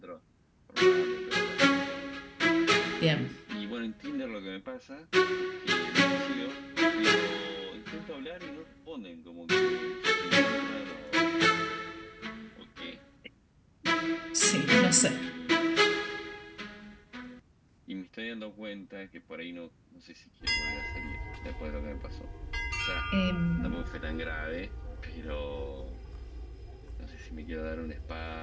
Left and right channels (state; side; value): identical; both; correlation 1.00